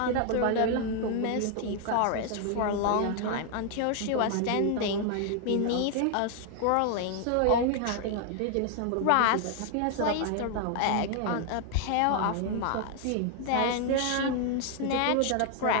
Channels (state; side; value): different; both; correlation 0.00